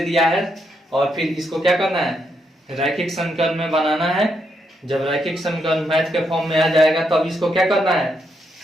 दिया है, और फिर इसको क्या करना है? रैखिक समीकरण में बनाना है। जब रैखिक समीकरण मैथ के फॉर्म में आ जाएगा तब इसको क्या करना है?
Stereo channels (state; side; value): normal; both; correlation 0.79